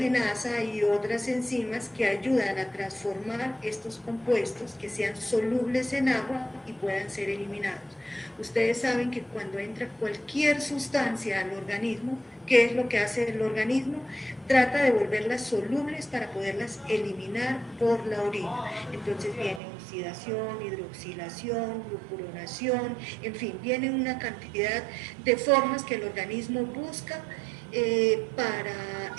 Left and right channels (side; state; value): left; drops out; at 19.6 s